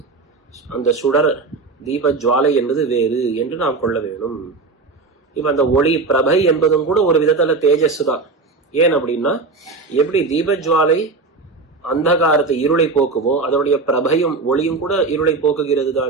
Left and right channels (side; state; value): left; quieter; 3.9 dB